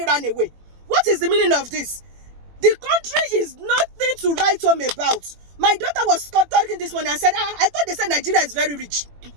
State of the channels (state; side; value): late; left; 21 ms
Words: ran away. What is the meaning of this? The country is nothing to write home about. My daughter was talking this morning and said, I thought they said Nigeria is very rich.